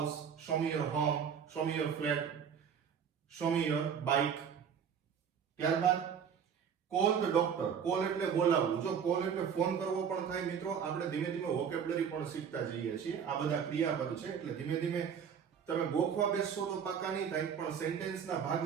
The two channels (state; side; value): quieter; left; 7.5 dB